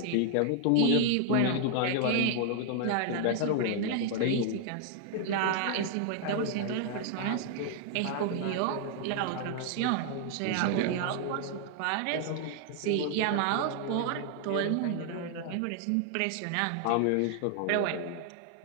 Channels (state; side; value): different; both; correlation 0.00